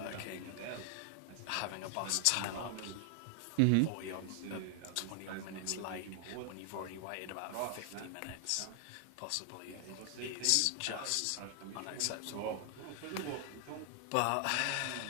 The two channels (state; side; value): different; both; correlation 0.00